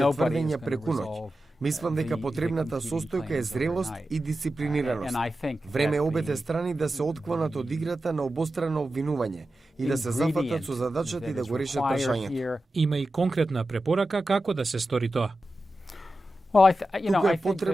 тврдења преку ноќ. Мислам дека потребната состојка е зрелост и дисциплинираност. Време е обете страни да се отклонат од играта на обострано обвинување и да се зафатат со задачата и да го решат прашањето. Има и конкретна препорака како да се стори тоа. Туку е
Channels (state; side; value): normal; both; correlation 0.92